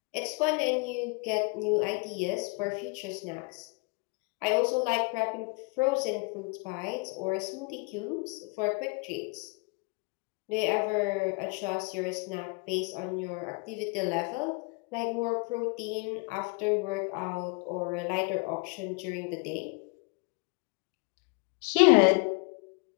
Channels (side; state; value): right; quieter; 31.4 dB